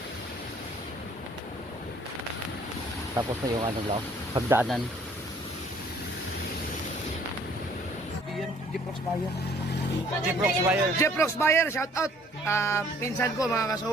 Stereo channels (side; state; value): both; normal; correlation 0.59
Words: Tapos na yung ano lang, pagdaanan. Jeprox Bayer. Jeprox Bayer. Shout out. Pinsan ko mga